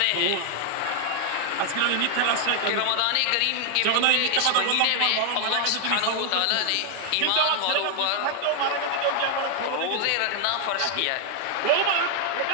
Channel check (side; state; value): both; different; correlation 0.00